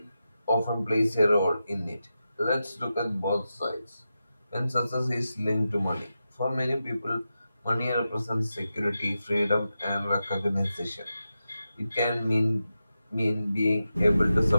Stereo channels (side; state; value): both; inverted; correlation -0.90